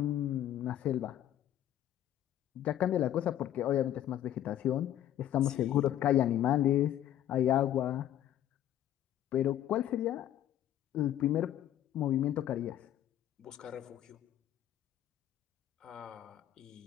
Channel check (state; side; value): quieter; right; 11.7 dB